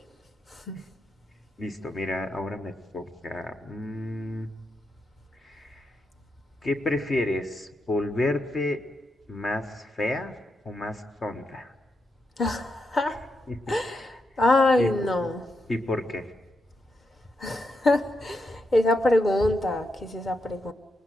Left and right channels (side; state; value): both; normal; correlation 0.84